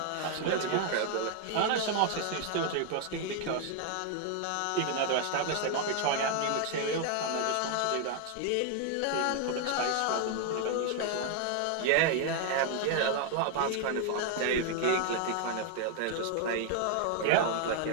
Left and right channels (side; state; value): both; different; correlation 0.00